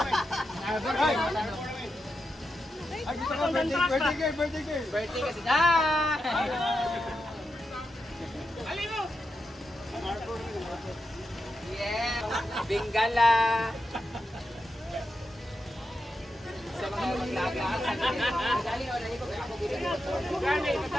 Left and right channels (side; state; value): both; normal; correlation 0.87